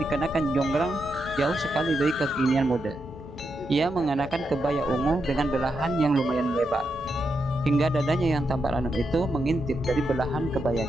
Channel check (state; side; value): normal; both; correlation 0.84